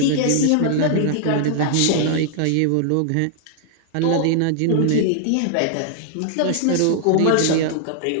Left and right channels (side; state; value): both; different; correlation -0.01